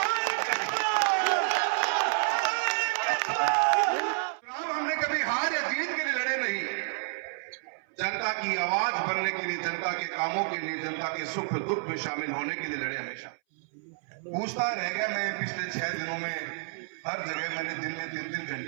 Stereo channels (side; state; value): left; silent; 58 dB below the other